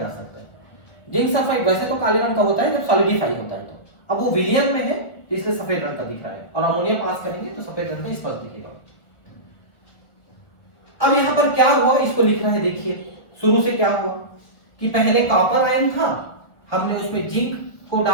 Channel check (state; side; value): late; right; 1.4 ms